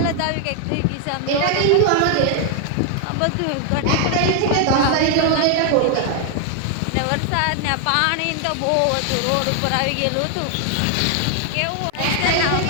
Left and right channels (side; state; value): both; different; correlation 0.00